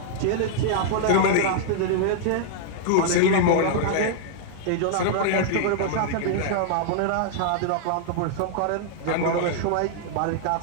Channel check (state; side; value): different; both; correlation -0.01